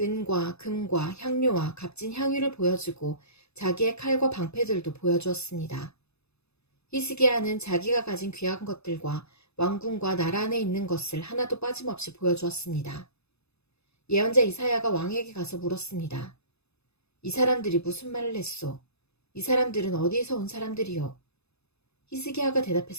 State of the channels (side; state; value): right; late; 0.79 ms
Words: 금과 향료와 값진 향유를 보여주고 자기의 칼과 방패들도 보여주었습니다. 히스기야는 자기가 가진 귀한 것들과 왕궁과 나라 안에 있는 것을 하나도 빠짐없이 보여주었습니다. 예언자 이사야가 왕에게 가서 물었습니다. 이 사람들이 무슨 말을 했소? 이 사람들은 어디에서 온 사람들이요? 히스기야가